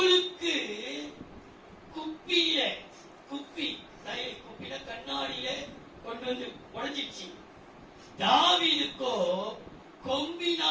குப்பியில குப்பில கண்ணாடியில கொண்டு வந்து உடைஞ்சிச்சு. தாவீதுக்கோ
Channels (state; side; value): identical; both; correlation 1.00